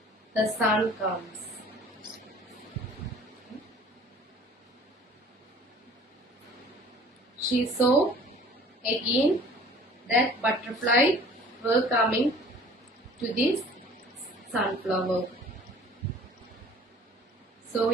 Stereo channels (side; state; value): both; normal; correlation 0.49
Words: the sun comes. She saw again that butterfly were coming to this sunflower. So